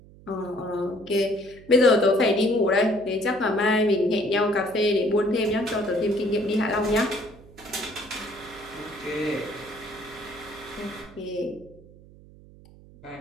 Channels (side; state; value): right; noise; hum, 22 dB below the sound